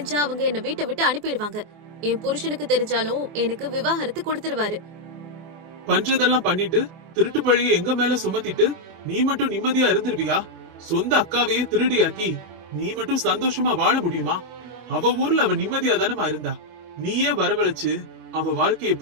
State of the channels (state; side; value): late; left; 24 ms